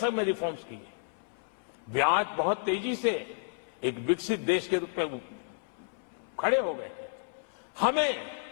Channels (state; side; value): silent; right; 57 dB below the other